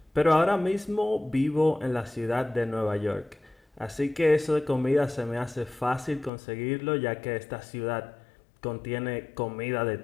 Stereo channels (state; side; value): drops out; right; at 6.3 s